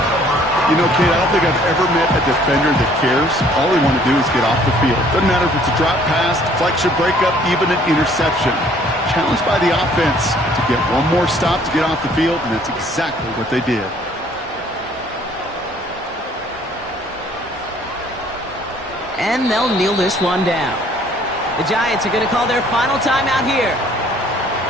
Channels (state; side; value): normal; both; correlation 0.59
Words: You know, Kate, I don't think I've ever met a defender that cares. All they want to do is get off the field. Doesn't matter if it's a drop pass, deflection, breakup, even an interception. Challenged by the offense to get one more stop to get off the field, and that's exactly what they did. And they'll kneel this one down. The Giants are going to call their final timeout here.